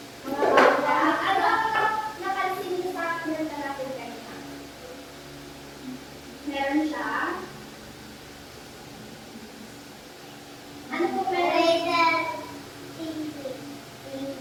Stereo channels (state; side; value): identical; both; correlation 1.00